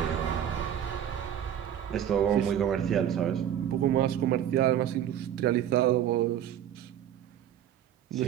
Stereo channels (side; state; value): left; quieter; 10.2 dB